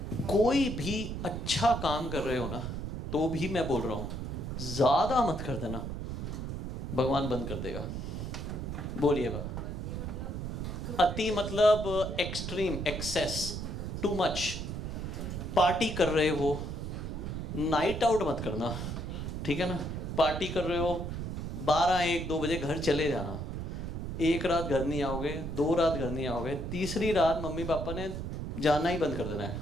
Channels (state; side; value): noise; right; rumble, 5 dB below the sound